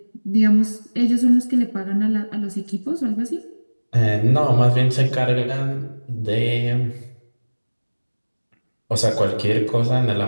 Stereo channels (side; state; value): both; inverted; correlation -1.00